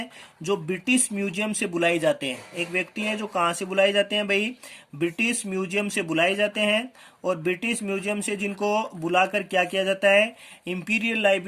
जो ब्रिटिश म्यूजियम से बुलाए जाते हैं। एक व्यक्ति हैं जो कहाँ से बुलाए जाते हैं भाई, ब्रिटिश म्यूजियम से बुलाए जाते हैं। और ब्रिटिश म्यूजियम से जिनको बुलाकर क्या किया जाता है, इंपीरियल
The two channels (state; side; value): identical; both; correlation 1.00